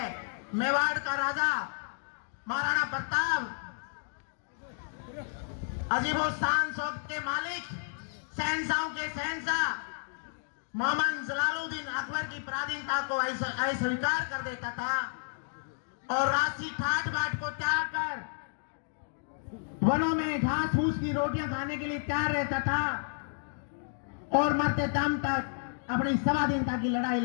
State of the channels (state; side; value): silent; right; digital silence